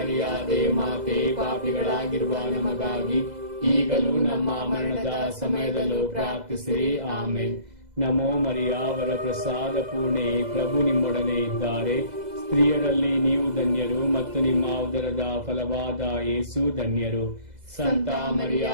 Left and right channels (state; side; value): late; left; 2.0 ms